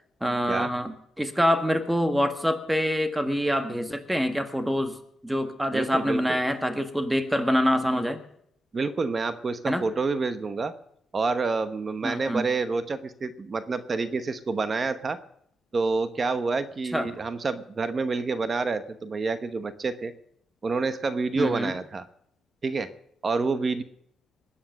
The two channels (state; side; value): normal; both; correlation 0.92